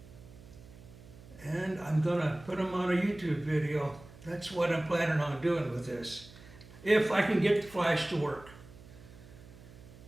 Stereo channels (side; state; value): right; noise; hum, 20 dB below the sound